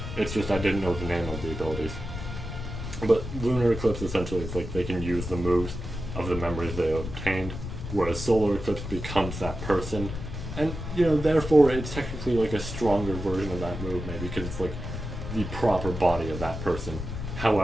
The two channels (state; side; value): noise; left; rumble, 7 dB below the sound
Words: It's just I didn't know the name of the abilities. But lunar eclipse, essentially, it's like they can use the moves of the memories they obtained, whereas solar eclipse becomes that person. And, you know, therefore it's technically like a stronger version of that move, maybe, because it's like the proper body of that person.